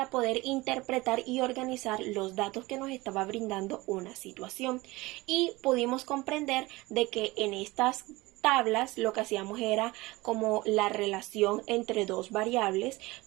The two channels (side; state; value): left; quieter; 21.2 dB